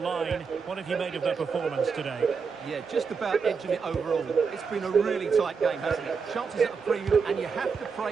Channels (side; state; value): left; quieter; 5.5 dB